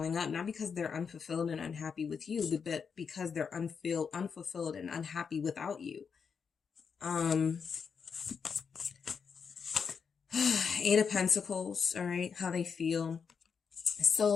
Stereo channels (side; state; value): right; quieter; 6.2 dB